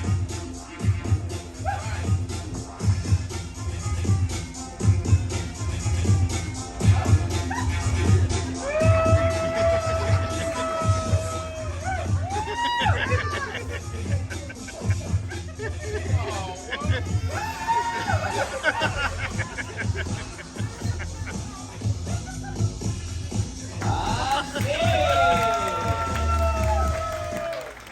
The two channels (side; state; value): both; identical; correlation 1.00